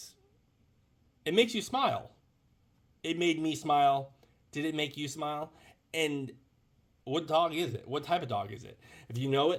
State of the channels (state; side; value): identical; both; correlation 1.00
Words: it makes you smile. It made me smile. Did it make you smile? And what dog is it? What type of dog is it? If you know